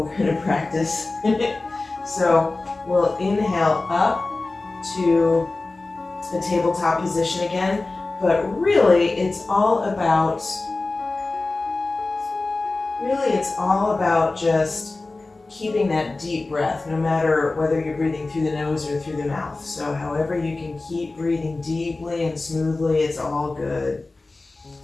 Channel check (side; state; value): right; quieter; 3.3 dB